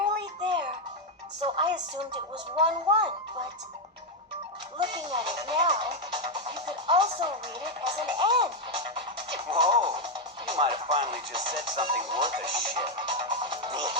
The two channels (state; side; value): normal; both; correlation 0.03